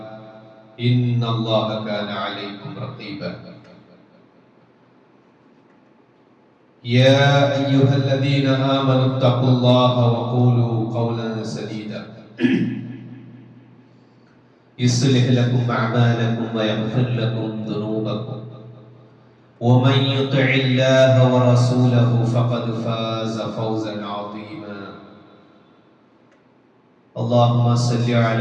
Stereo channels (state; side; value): identical; both; correlation 1.00